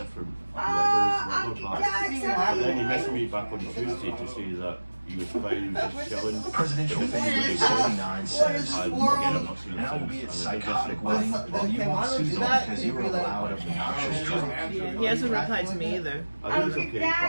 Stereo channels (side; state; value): both; inverted; correlation -1.00